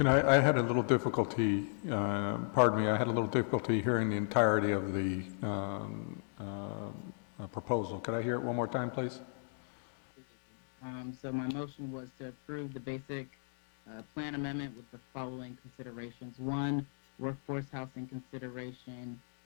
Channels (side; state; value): right; silent; digital silence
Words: I had a little difficulty, pardon me, I had a little difficulty hearing the entirety of the proposal. Could I hear it one more time, please? So my motion was to approve the basic plan amendment with the following considerations. One, workforce housing consideration